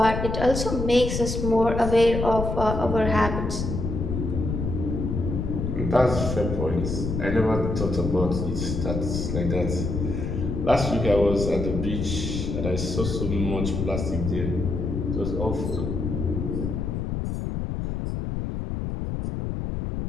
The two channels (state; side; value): noise; left; rumble, 3 dB below the sound